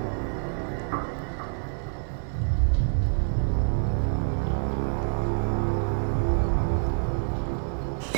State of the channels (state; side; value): silent; left; 60 dB below the other